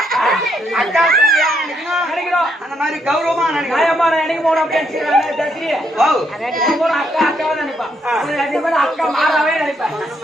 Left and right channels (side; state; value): both; normal; correlation 0.75